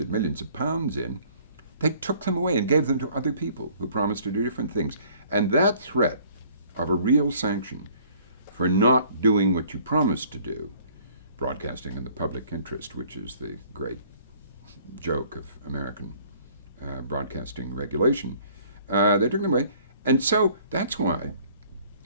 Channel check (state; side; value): inverted; both; correlation -0.57